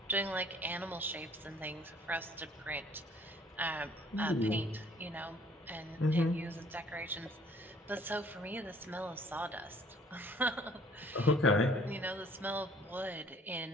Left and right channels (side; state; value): both; normal; correlation 0.57